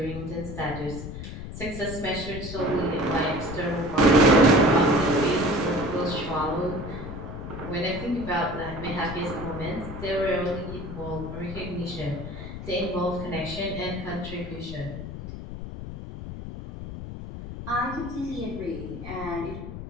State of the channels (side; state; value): left; noise; rumble, 9 dB below the sound